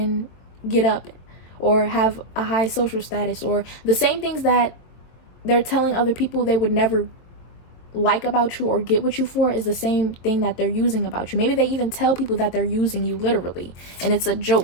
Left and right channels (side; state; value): right; late; 23 ms